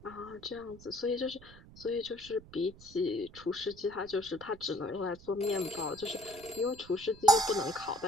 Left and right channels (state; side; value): noise; right; rumble, 20 dB below the sound